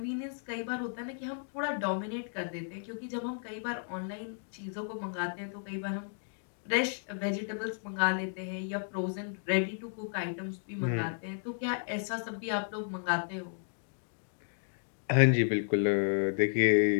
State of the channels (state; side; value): silent; right; digital silence